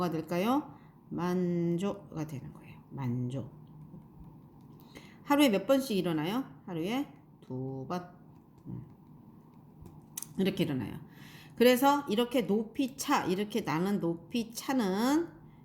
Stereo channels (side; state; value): both; identical; correlation 1.00